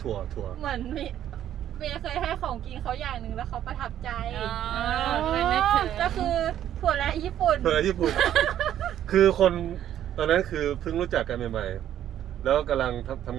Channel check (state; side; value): quieter; left; 11.1 dB